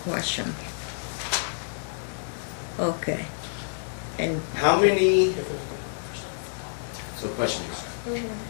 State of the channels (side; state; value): right; silent; digital silence